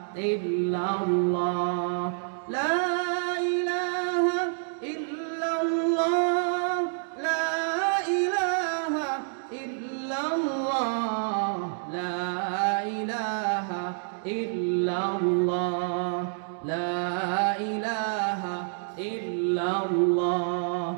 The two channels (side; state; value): left; silent; digital silence